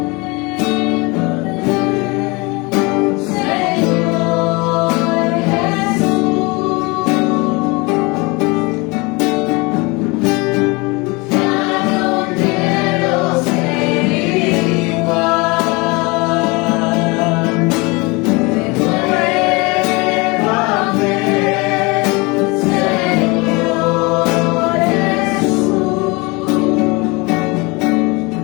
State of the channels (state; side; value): quieter; right; 26.2 dB